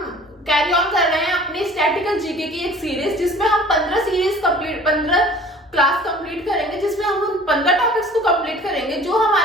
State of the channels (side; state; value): both; normal; correlation 0.48